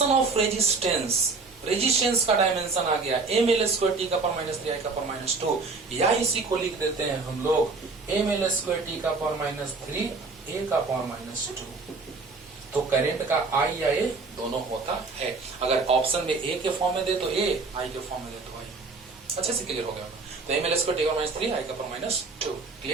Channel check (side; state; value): left; quieter; 4.0 dB